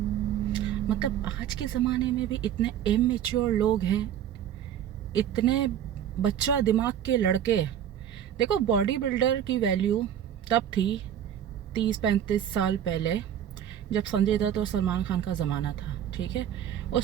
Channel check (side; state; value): left; quieter; 10.0 dB